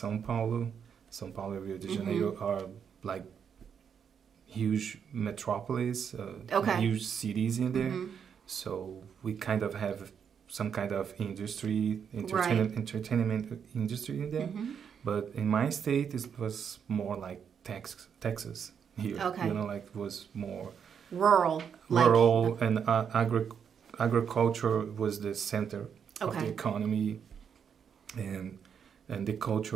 Paulo. São Paulo and Rio de Janeiro mm-hmm. are like huge metropolis, okay. huge cities in there. Mm-hmm. So we kind of have some kind of entertainment industry in there. Mm-hmm. But in my state, it was more like Texas here. Okay. You know, like it was more rural, and agriculture was the center okay. of the economy, and the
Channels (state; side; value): quieter; left; 7.4 dB